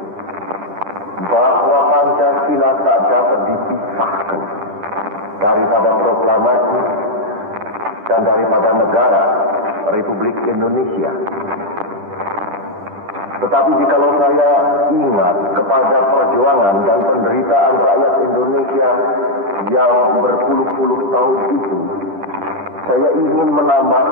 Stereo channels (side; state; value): left; late; 10 ms